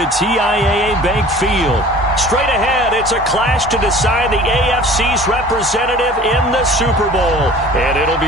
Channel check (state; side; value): normal; both; correlation 0.45